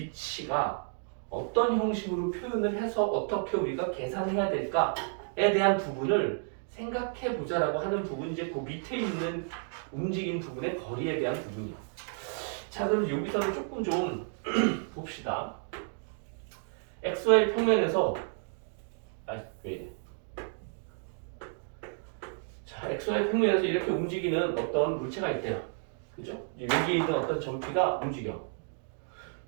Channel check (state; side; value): silent; left; 57 dB below the other